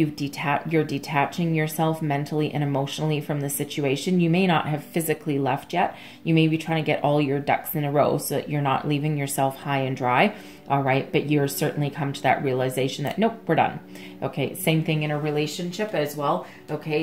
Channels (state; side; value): identical; both; correlation 1.00